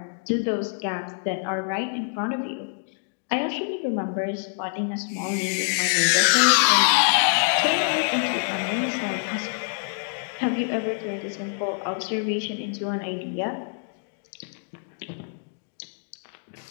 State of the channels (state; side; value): silent; right; digital silence